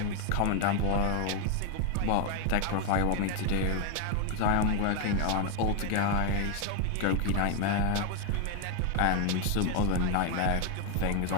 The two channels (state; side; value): different; both; correlation 0.01